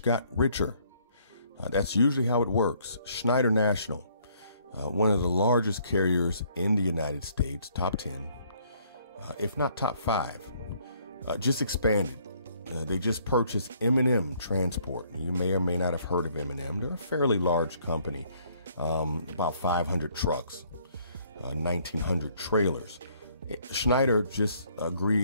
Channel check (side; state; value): both; inverted; correlation -0.64